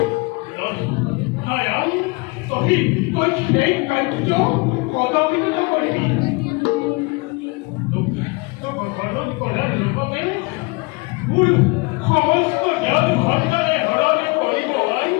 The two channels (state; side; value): quieter; right; 26.8 dB